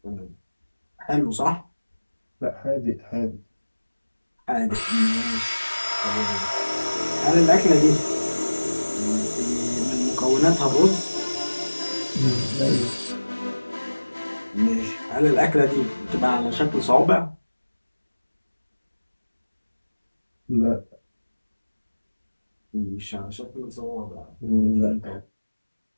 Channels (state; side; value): inverted; both; correlation -1.00